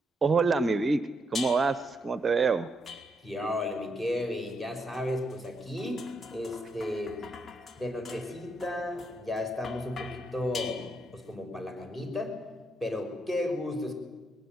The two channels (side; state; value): both; normal; correlation 0.79